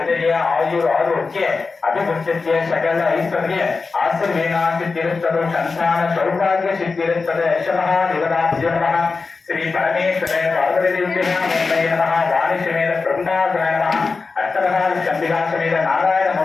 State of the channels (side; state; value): right; quieter; 4.3 dB